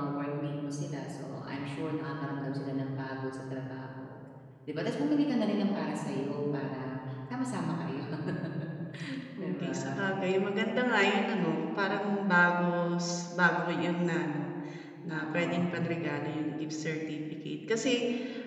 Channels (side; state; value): both; identical; correlation 1.00